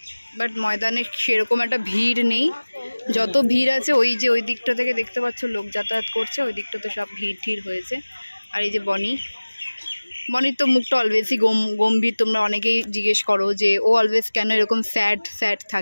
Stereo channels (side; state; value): both; inverted; correlation -1.00